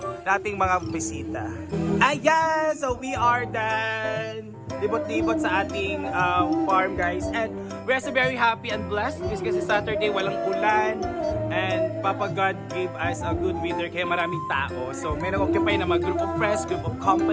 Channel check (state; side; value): identical; both; correlation 1.00